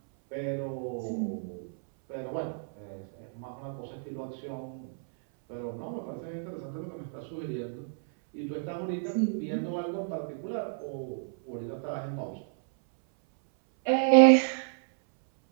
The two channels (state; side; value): silent; left; 57 dB below the other